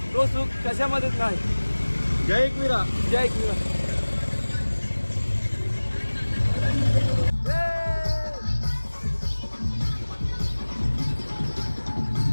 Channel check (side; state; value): both; inverted; correlation -1.00